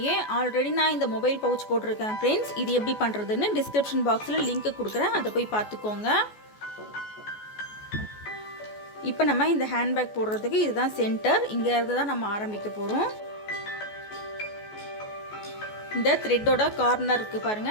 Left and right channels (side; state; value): right; late; 14 ms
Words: ஆல்ரெடி நான் இந்த மொபைல் பவுச் போட்டிருக்கேன் ஃப்ரெண்ட்ஸ். இது எப்படி பண்ணுறதுன்னு டிஸ்கிரிப்ஷன் பாக்ஸில் லிங்க் கொடுக்குறேன், அதை போய் பார்த்துக்கோங்க. இப்போ நம்ம இந்த ஹேண்ட்பேக் போடுறதுக்கு இதுதான் சென்டர். இங்கே இருந்து தான் நம்ம ஆரம்பிக்க போகிறோம். இந்த த்ரெட்டோட கார்னர் இருக்குது